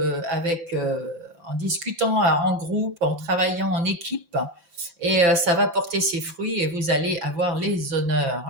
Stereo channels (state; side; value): late; left; 5.8 ms